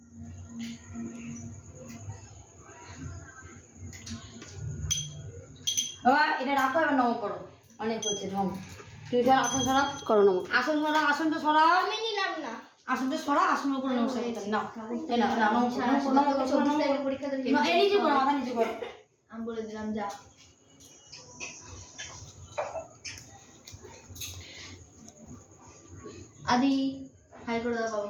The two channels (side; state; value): both; identical; correlation 1.00